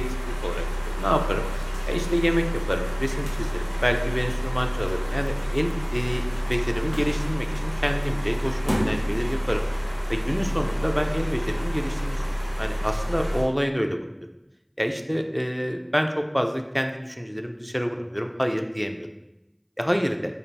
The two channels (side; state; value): both; identical; correlation 1.00